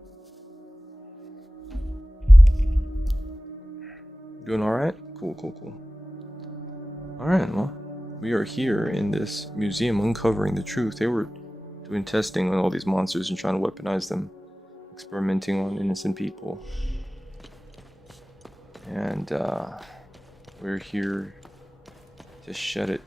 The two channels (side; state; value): both; normal; correlation 0.97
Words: Doing alright? Cool, cool, cool. Alright, well, we are here in this museum uncovering the truth. They were doing testing on all these monsters and trying to weaponize them, experimenting on innocent people. And we're here to shut it